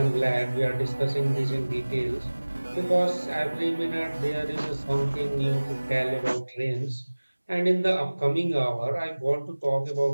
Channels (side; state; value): both; inverted; correlation -1.00